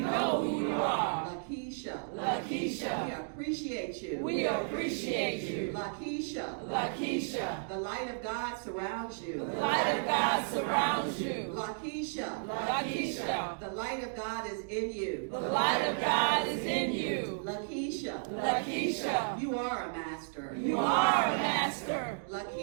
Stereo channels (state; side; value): silent; left; digital silence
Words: who you are. Lakeisha. Lakeisha. We appreciate you. We appreciate you. Lakeisha. Lakeisha. The light of God surrounds you. The light of God surrounds you. Lakeisha. Lakeisha. The light of God is in you. The light of God is in you. Lakeisha. Lakeisha. You are a master. You are a master.